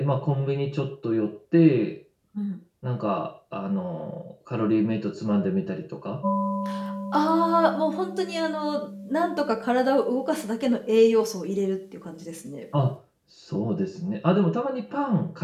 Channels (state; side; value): identical; both; correlation 1.00